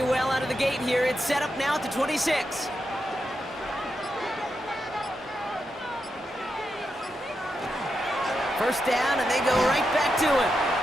well out of the gate here. It's set up now at the 26. First down, and they go right back to him.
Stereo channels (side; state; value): both; normal; correlation 0.86